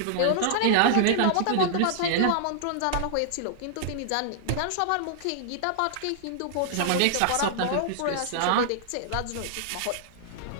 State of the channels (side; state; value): both; different; correlation -0.01